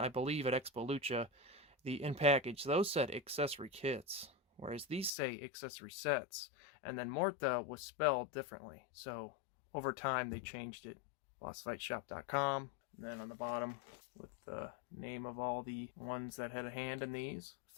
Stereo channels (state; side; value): drops out; right; at 5.1 s